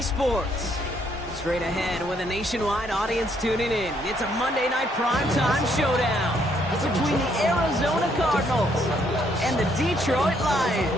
Sports. Straight ahead with a nationwide audience tuning in. It's a Monday Night Primetime showdown between the Arizona Cardinals and the Detroit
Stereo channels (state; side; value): normal; both; correlation 0.70